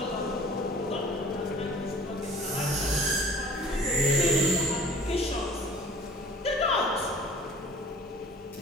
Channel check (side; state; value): both; normal; correlation 0.46